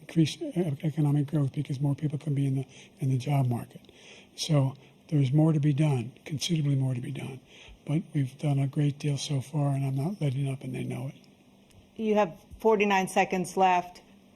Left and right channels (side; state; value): both; identical; correlation 1.00